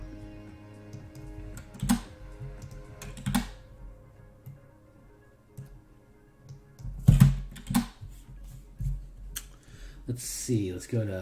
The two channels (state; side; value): identical; both; correlation 1.00